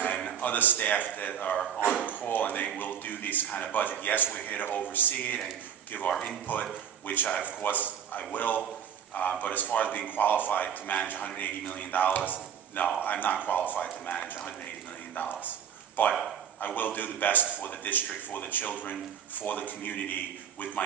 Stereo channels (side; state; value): left; quieter; 8.7 dB